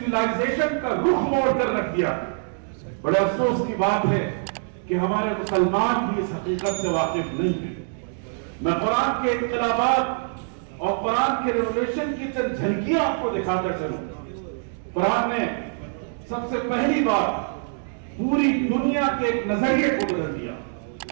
کا رخ موڑ کر رکھ دیا۔ بڑے افسوس کی بات ہے کہ ہمارے مسلمان بھی اس حقیقت سے واقف نہیں ہیں۔ میں قرآن کے انقلابات اور قرآن کے ریولیوشن کی چند جھلکیاں آپ کو دکھا کر چلوں۔ قرآن نے سب سے پہلی بار پوری دنیا کے ایک نظریے کو بدل دیا۔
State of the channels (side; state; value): left; silent; digital silence